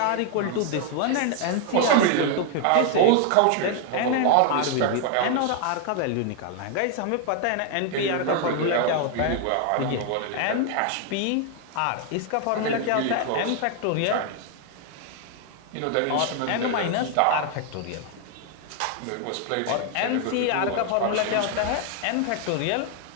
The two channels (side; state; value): both; different; correlation 0.00